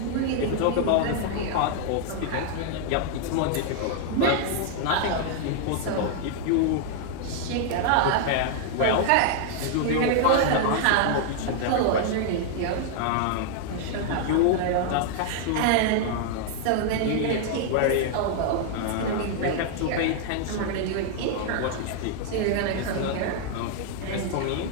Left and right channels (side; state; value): both; different; correlation 0.00